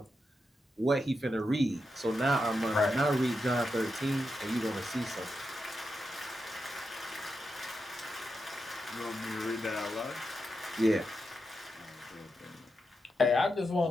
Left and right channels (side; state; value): both; normal; correlation 0.87